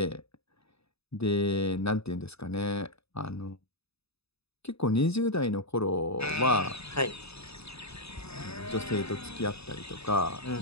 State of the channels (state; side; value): late; right; 0.79 ms